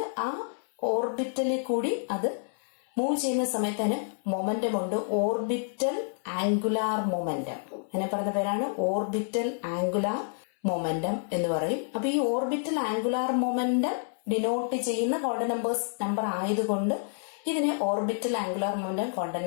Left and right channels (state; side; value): silent; right; 58 dB below the other